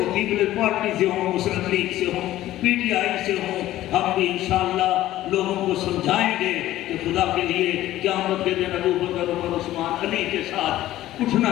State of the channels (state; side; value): quieter; right; 14.5 dB